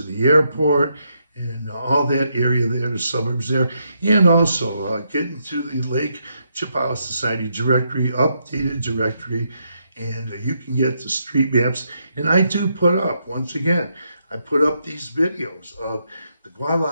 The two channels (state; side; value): inverted; both; correlation -0.79